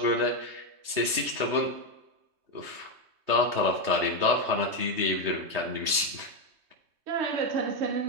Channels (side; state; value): left; late; 3.2 ms